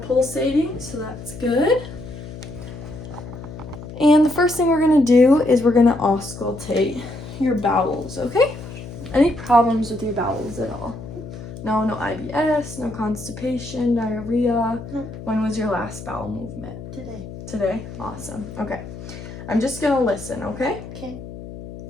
so that's good. And the first thing we're gonna do is we're gonna auscultate your bowels, okay? Any problems with your bowels at all? No IBS, no constipation, diarrhea? Nope. When was your last bowel movement? Today. Today? Awesome, okay. I'm just gonna listen, okay? Okay.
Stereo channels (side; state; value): left; noise; hum, 12 dB below the sound